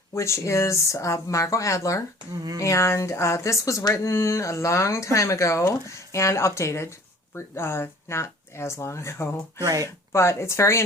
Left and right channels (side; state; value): both; normal; correlation 0.49